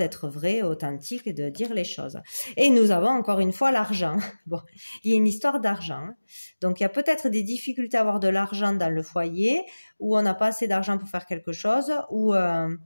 vrai, authentique et de dire les choses. Et nous avons encore une fois l'argent. Bon, il y a une histoire d'argent. Donc, il y a peut-être des difficultés à avoir de l'argent dans le foyer, où on n'a pas assez d'argent pour faire quelque chose, ou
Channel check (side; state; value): both; inverted; correlation -1.00